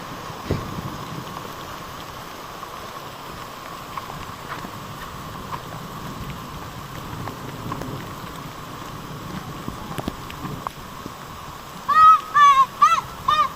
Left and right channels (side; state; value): both; identical; correlation 1.00